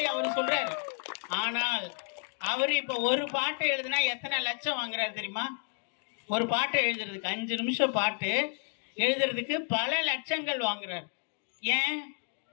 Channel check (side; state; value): right; silent; 57 dB below the other